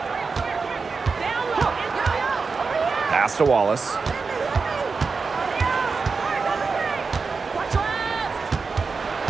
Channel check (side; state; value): left; quieter; 4.7 dB